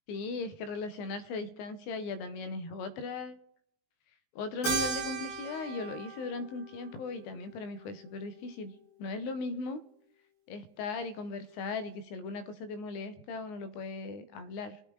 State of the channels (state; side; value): late; right; 19 ms